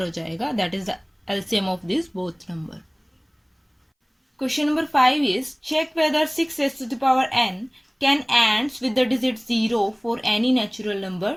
हो जाएगा. That is the LCM of these both number. Question number 5 is check whether 6 raised to the power n can ends with the digit 0 for any natural number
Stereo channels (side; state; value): both; identical; correlation 1.00